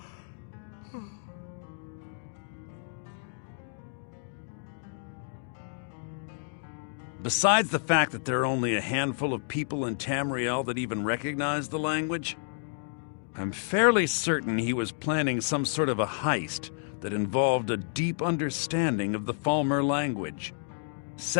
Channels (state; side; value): silent; right; digital silence